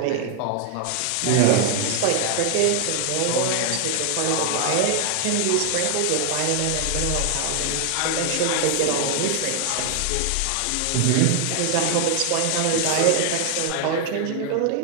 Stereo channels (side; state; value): both; different; correlation 0.00